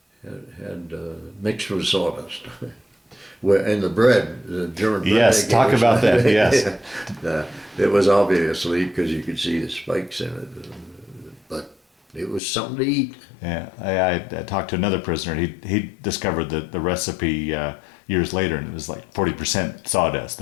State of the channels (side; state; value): right; drops out; at 12.4 s